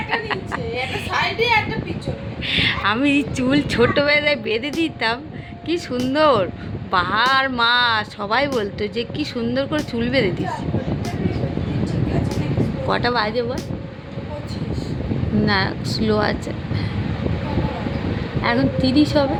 আমি চুল ছোটোবেলায় বেঁধে দিতাম, কি সুন্দর বাহার মা সবাই বলতো যে কি সুন্দর করে চুল বেঁধে দিস। কটা বাজে বল? না, স্লো আছে, এখন 30 হবে।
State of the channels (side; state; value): both; identical; correlation 1.00